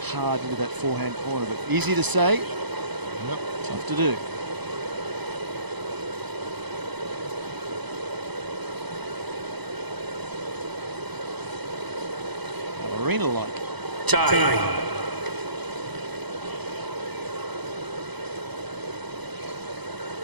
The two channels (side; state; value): left; late; 1.0 ms